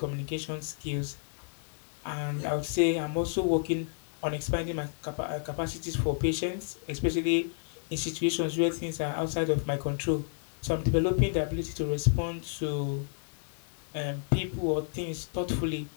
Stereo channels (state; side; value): silent; right; 57 dB below the other